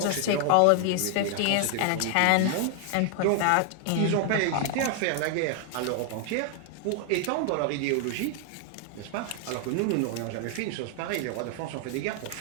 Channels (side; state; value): both; different; correlation 0.00